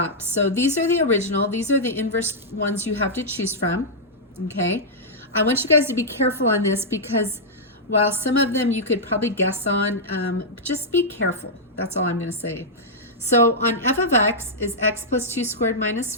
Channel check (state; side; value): normal; both; correlation -0.09